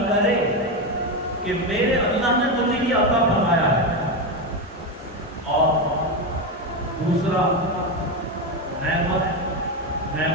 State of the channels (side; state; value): both; normal; correlation 0.12